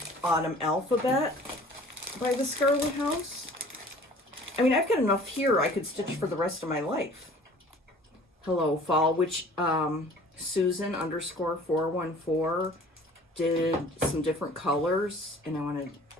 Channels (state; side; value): normal; both; correlation 0.49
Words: Autumn Alphabet by the Scarlet House. I mean, I've got enough here I could stitch for the rest of my life. Hello Fall, which Susan _414 did some different colors, and I want to